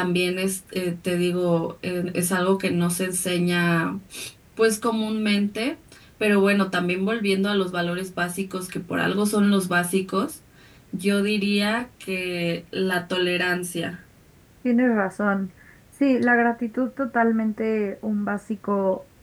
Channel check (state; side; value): identical; both; correlation 1.00